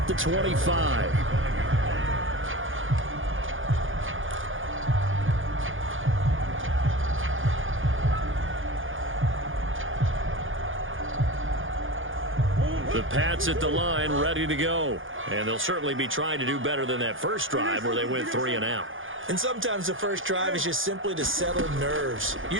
the 25. The Pats at the line ready to go. And they'll certainly be trying to do better than that first drive where they went 3 and out. And sometimes the first drive is just simply to settle nerves.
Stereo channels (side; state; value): left; late; 0.58 ms